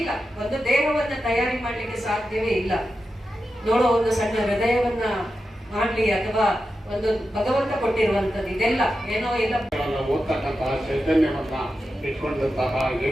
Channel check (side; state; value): both; normal; correlation 0.90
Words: ಒಂದು ದೇಹವನ್ನ ತಯಾರಿ ಮಾಡ್ಲಿಕ್ಕೆ ಸಾಧ್ಯವೇ ಇಲ್ಲ. ನೋಡೋ ಒಂದು ಸಣ್ಣ ಹೃದಯವನ್ನ ಮಾಡ್ಲಿ ಅಥವಾ ಒಂದು ಭಗವಂತ ಕೊಟ್ಟಿರುವಂತದ್ದು ಇದೆಲ್ಲ ಏನೋ ಇಲ್ಲ. ಓದ್ತಕ್ಕಂತಹ ಚೈತನ್ಯವನ್ನ ಇಟ್ಕೊಂಡಂತಹ